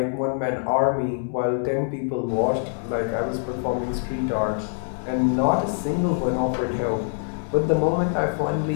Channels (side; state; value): right; silent; digital silence